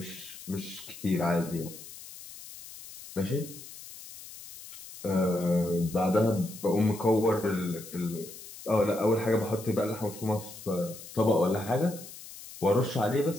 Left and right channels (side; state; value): left; noise; hiss, 15 dB below the sound